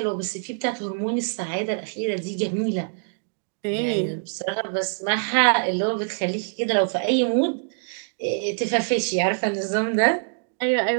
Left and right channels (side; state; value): left; silent; digital silence